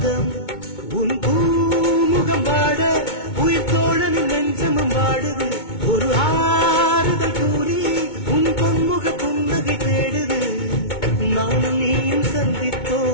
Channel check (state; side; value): late; right; 2.2 ms